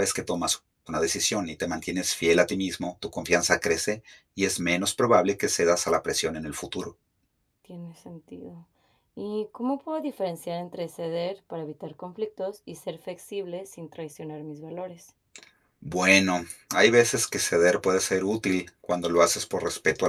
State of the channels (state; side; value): identical; both; correlation 1.00